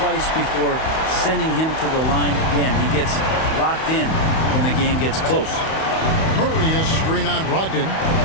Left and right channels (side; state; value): right; late; 31 ms